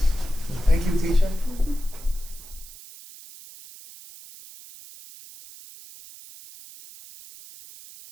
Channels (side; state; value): right; noise; hiss, 18 dB below the sound